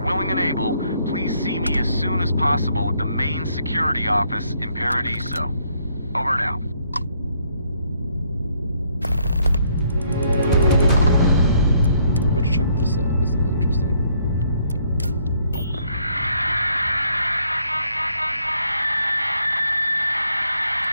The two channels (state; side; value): inverted; both; correlation -0.69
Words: willing and able, please see me as soon as possible at the main security office in Paradiso. Over and out. Let's check this out. This is interesting.